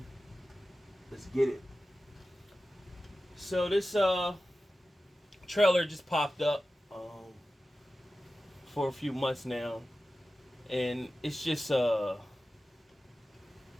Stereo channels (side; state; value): both; normal; correlation 0.95